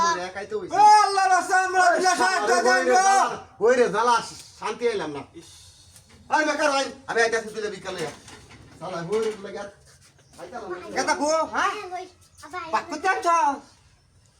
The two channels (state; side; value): identical; both; correlation 1.00